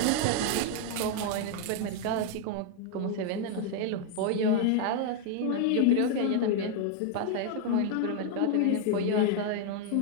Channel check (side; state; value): both; different; correlation 0.00